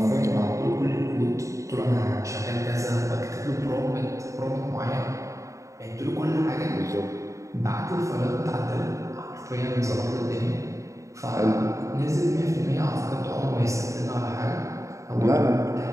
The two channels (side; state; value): left; late; 0.15 ms